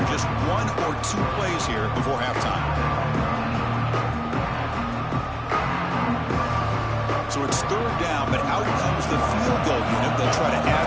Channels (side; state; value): both; identical; correlation 1.00